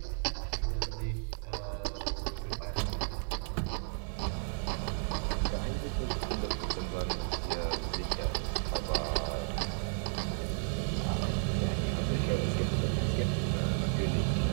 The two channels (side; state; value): left; silent; 56 dB below the other